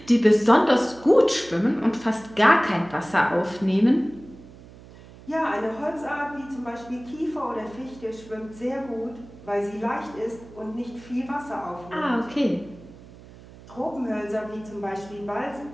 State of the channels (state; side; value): noise; right; hum, 20 dB below the sound